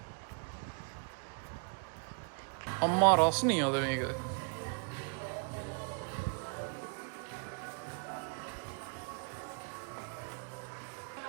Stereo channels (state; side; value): quieter; left; 37.3 dB